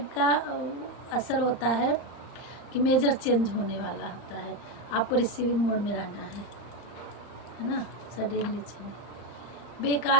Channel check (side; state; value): right; late; 35 ms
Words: का असर होता है कि मेजर चेंज होने वाला होता है, आपको रिसीविंग मोड में रहना है ना। सडनली चेंज,